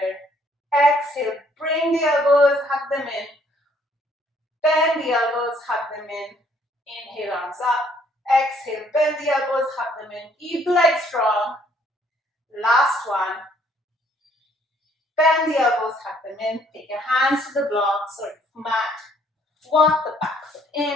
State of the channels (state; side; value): normal; both; correlation 0.64